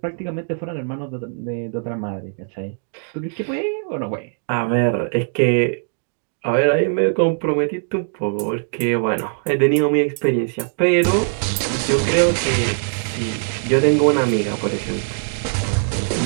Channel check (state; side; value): silent; left; 65 dB below the other